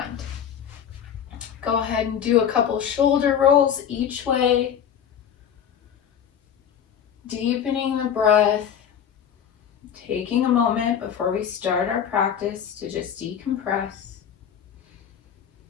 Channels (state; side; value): quieter; right; 8.5 dB